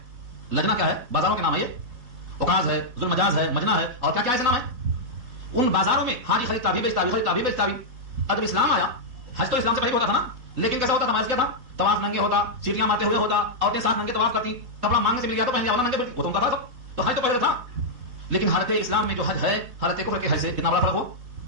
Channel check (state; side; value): late; left; 4.0 ms